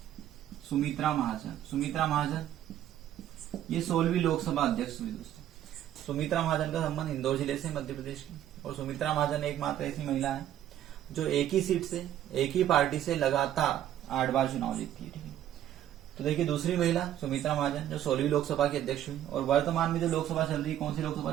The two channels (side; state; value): left; quieter; 11.7 dB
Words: सुमित्रा महाजन ये 16वीं लोकसभा अध्यक्ष हुई दोस्तों। सुमित्रा महाजन का संबंध इंदौर जिले से, मध्य प्रदेश की। और सुमित्रा महाजन एकमात्र ऐसी महिला है जो एक ही सीट से, एक ही पार्टी से लगातार 8 बार चुनाव जीतती है, ठीक है। तो देखिए, दूसरी महिला सुमित्रा महाजन जो 16वीं लोकसभा की अध्यक्ष हुई। और वर्तमान में जो लोकसभा चल रही, कौन सी लोकसभा